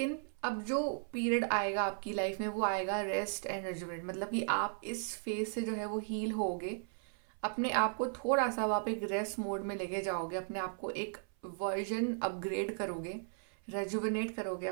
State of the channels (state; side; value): silent; left; 54 dB below the other